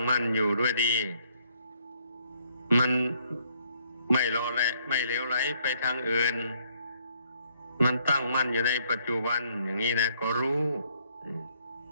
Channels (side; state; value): both; inverted; correlation -0.68